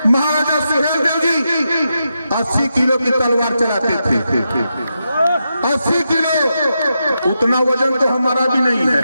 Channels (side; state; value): both; inverted; correlation -0.86